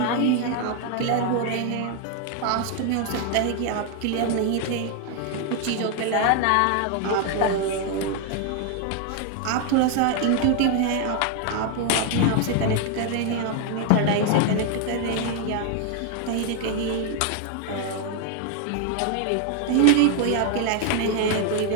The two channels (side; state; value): both; different; correlation 0.01